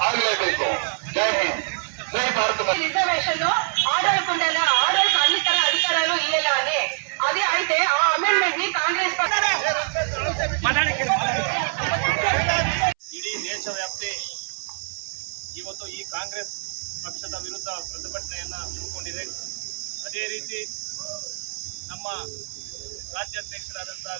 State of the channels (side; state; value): left; silent; 62 dB below the other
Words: జై హింద్, జై భారత. రిజర్వేషన్ ఆడోళ్ళకుండాల ఆడోళ్ళకి అన్ని తర అధికారాలు ఇవ్వాలని అది అయితే ఆ అమెండ్మెంట్ ని కాంగ్రెస్ ಇಡೀ ದೇಶವ್ಯಾಪ್ತಿ ಇವತ್ತು ಈ ಕಾಂಗ್ರೆಸ್ ಪಕ್ಷದ ವಿರುದ್ಧ ಪ್ರತಿಭಟನೆಯನ್ನು ಹಮ್ಮಿಕೊಂಡಿದೆ. ಅದೇ ರೀತಿ ನಮ್ಮ ರಾಜ್ಯಾಧ್ಯಕ್ಷರಾದಂಥ